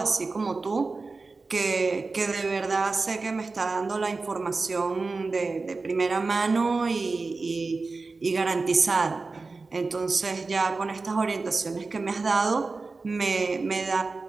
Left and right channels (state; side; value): quieter; left; 3.9 dB